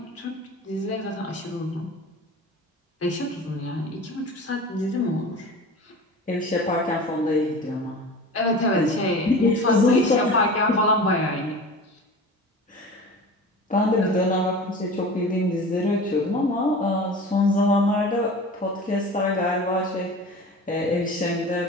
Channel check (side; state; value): both; normal; correlation 0.36